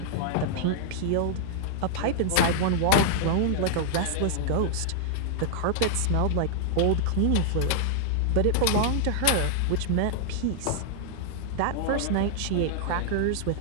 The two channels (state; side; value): different; both; correlation -0.01